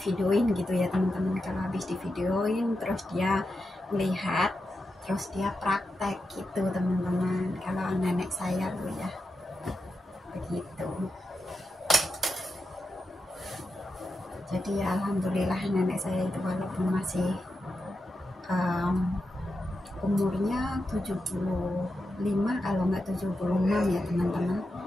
gitu ya teman-teman. Kalau habis di videoin terus dia lihat, terus dia praktek gitu teman-teman. Kalau nenek saya tuh ya begitu. Jadi ya alhamdulillah nenek saya itu walaupun masih umurnya 75 kalau nggak 76 ya teman-teman,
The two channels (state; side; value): normal; both; correlation 0.88